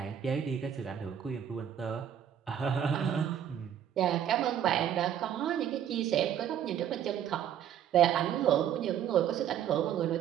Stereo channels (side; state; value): left; quieter; 9.7 dB